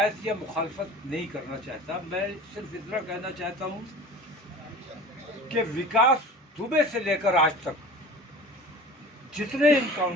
या मुखालफत नहीं करना चाहता। मैं सिर्फ इतना कहना चाहता हूँ कि विकास दुबे से लेकर आज तक जितने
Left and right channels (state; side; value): normal; both; correlation 0.40